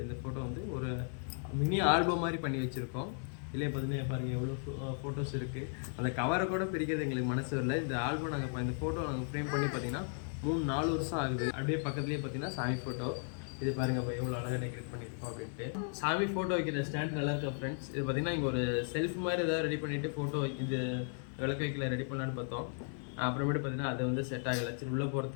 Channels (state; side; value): silent; right; 54 dB below the other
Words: இந்த ஃபோட்டோ வந்து ஒரு மினி ஆல்பம் மாதிரி பண்ணி வச்சுருக்கோம். இல்லையே பார்த்தீங்கன்னா பாருங்கள் எவ்வளோ ஃபோட்டோஸ் இருக்குது. அந்த கவரை கூட பிரிக்கிறது எங்களுக்கு மனசு வரல. இந்த ஆல்பம் நாங்கள் இந்த ஃபோட்டோ நாங்கள் ஃப்ரேம் பண்ணி பார்த்தீங்கன்னா 3-4 வருஷம் ஆகுது. அப்படியே பக்கத்துலேயே பார்த்தீங்கன்னா சாமி ஃபோட்டோ. இது பாருங்க இப்போ எவ்வளோ அழகாக டெக்கரேட் பண்ணியிருக்கோம் அப்படின்ட்டு. சாமி ஃபோட்டோ வைக்கிற ஸ்டாண்ட் நல்லா இருக்கா ஃப்ரெண்ட்ஸ். இது பார்த்தீங்கன்னா இங்கே ஒரு செல்ஃப் மாதிரி ஏதாவது ரெடி பண்ணிவிட்டு ஃபோட்டோ இது விளக்கு வைக்கல ரெடி பண்ணலான்னு பார்த்தோம். அப்புறமேட்டு பார்த்தீங்கன்னா அது வந்து செட் ஆகலை. சரி உள்ளே